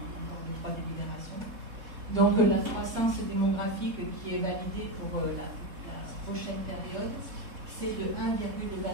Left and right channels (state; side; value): late; left; 3.7 ms